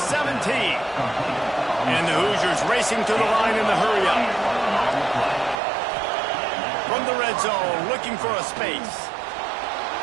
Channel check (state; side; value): drops out; left; at 5.6 s